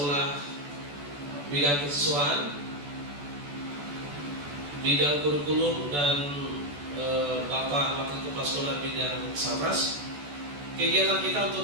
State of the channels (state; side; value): late; left; 14 ms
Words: bidang kesiswaan, bidang kurikulum, dan Bapak Wakil Kepala Sekolah bidang Sabras. Kegiatan kita untuk